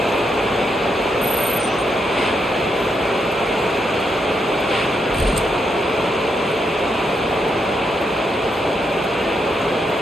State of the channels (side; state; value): both; normal; correlation 0.80